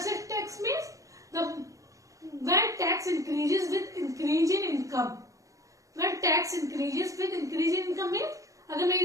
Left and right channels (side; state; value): left; late; 0.16 ms